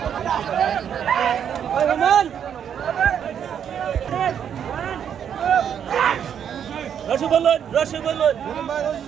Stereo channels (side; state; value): left; quieter; 8.6 dB